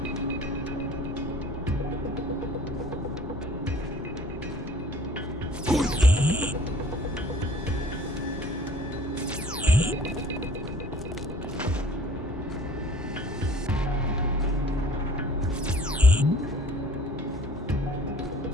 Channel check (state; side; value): normal; both; correlation 0.51